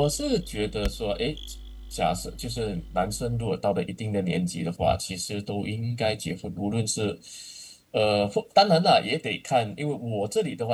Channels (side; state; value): both; identical; correlation 1.00